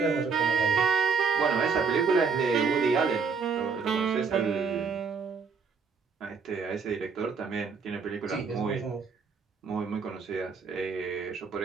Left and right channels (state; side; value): quieter; left; 5.3 dB